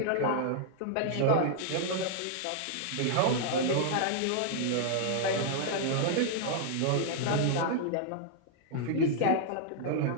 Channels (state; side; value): different; both; correlation -0.01